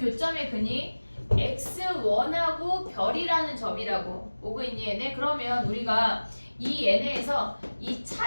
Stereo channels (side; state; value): both; inverted; correlation -1.00